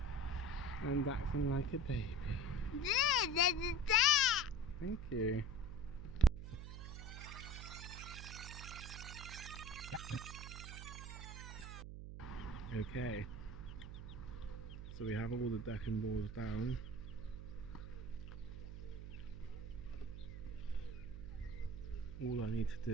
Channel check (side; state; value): right; noise; hum, 8 dB below the sound